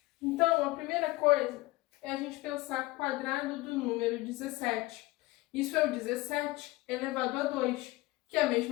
Então, a primeira coisa é a gente pensar quadrado do número 17. Isso é o 17 elevado a 2, que é a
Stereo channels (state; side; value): quieter; right; 19.6 dB